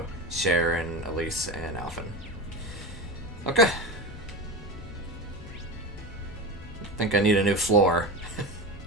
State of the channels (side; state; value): both; normal; correlation 0.24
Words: Sharon, Elise, and Alphen. Okay. I think I need a new floor.